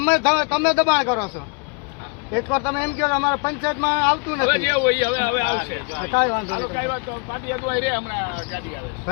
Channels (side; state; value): right; quieter; 33.2 dB